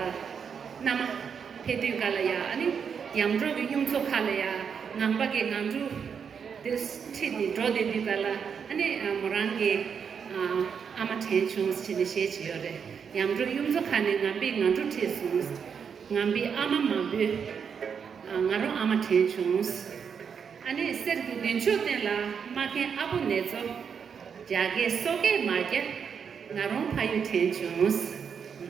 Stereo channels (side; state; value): left; quieter; 6.8 dB